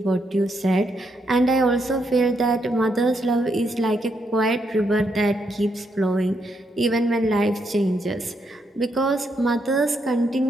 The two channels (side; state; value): both; normal; correlation 0.78